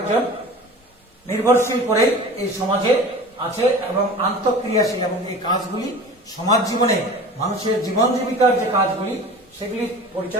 নির্ভরশীল করে এই সমাজে আছে এবং আন্তঃক্রিয়াশীল, এবং এই কাজগুলি সমাজ জীবনে মানুষের জীবন জীবিকার যে কাজগুলি সেগুলি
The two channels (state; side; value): normal; both; correlation 0.38